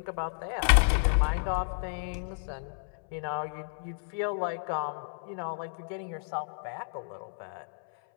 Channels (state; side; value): silent; right; 57 dB below the other